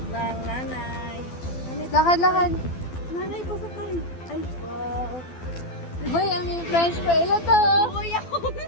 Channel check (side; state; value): right; late; 12 ms